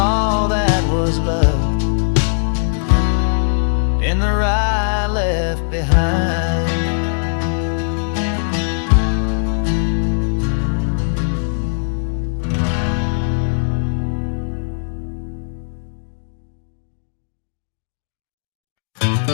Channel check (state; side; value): silent; right; digital silence